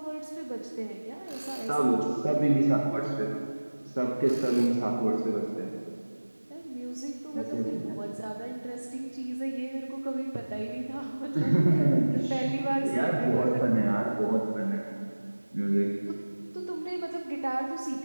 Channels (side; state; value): both; inverted; correlation -1.00